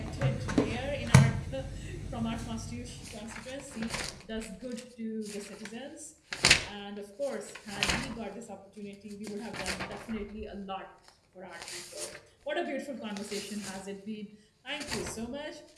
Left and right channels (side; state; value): both; identical; correlation 1.00